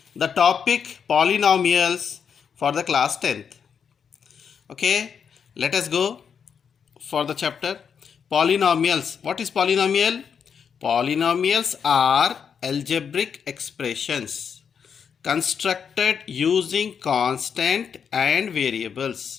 the topic polynomials for the class 10th. Okay, let us go for the chapter polynomials. What is polynomial? Polynomials are algebraic expressions constructed using constant and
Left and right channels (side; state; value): right; quieter; 7.0 dB